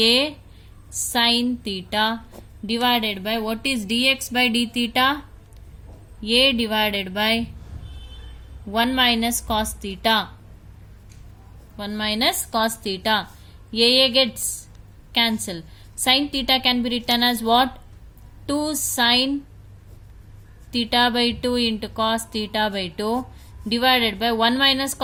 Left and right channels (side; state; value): both; identical; correlation 1.00